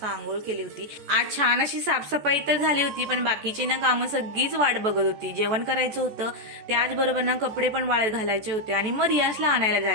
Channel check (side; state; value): left; late; 14 ms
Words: आंघोळ केली होती. आज छान अशी साफसफाई तर झाली होती, पण बाकीची ना कामं सगळीच वाट बघत होती. जेवण करायचं होतं, त्याचबरोबर ना कपडे पण वाळत घालायचे होते आणि मग रियान्सला आणायला